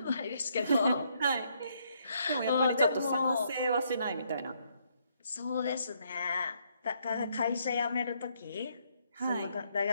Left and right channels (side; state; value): both; inverted; correlation -0.72